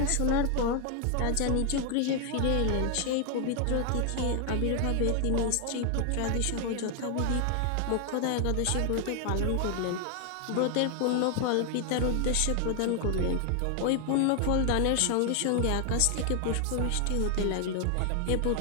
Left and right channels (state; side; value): different; both; correlation 0.00